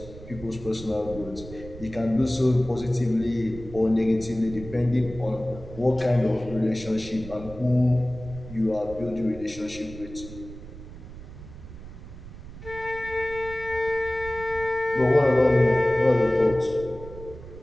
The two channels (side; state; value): right; noise; rumble, 14 dB below the sound